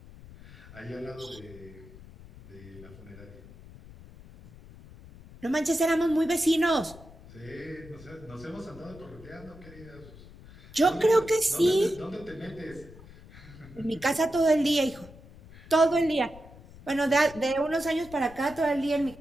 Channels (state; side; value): noise; left; rumble, 19 dB below the sound